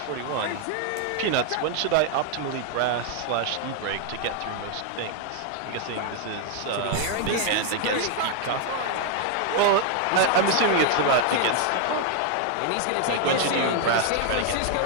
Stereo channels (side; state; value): both; different; correlation 0.00